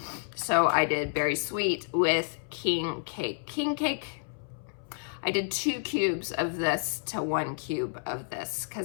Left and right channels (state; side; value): silent; right; 58 dB below the other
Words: So I did Berry Sweet with King Cake. King Cake, I did 2 cubes of this to 1 cube of this